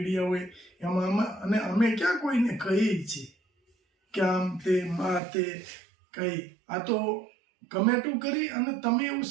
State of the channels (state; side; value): drops out; left; at 5.2 s